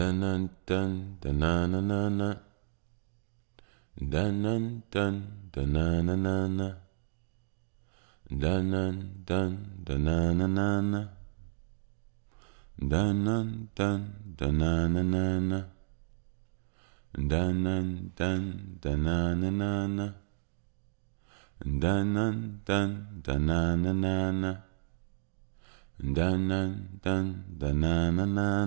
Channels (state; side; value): silent; left; digital silence